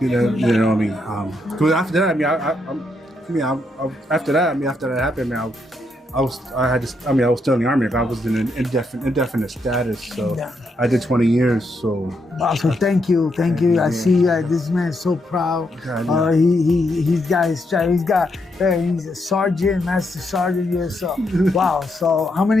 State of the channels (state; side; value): normal; both; correlation 0.79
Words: You know what I mean? Because after that, after that happened, man, I was still in the Army. I was in an indefinite status, so I did 20 years. So wow, so thank you. I see this man is so proud. He's a sergeant, master sergeant. Yes, so wow. So how